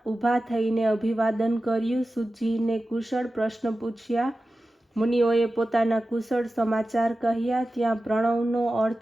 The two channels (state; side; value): normal; both; correlation 0.94